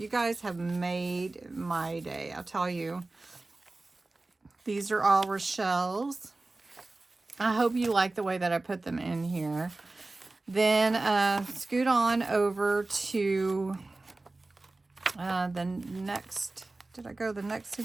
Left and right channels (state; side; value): quieter; left; 3.2 dB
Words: guys have made my day, I'll tell you. These are all Rochelle's. I hope you like the way that I put them in here. Then scoot on over to the next, did I go the next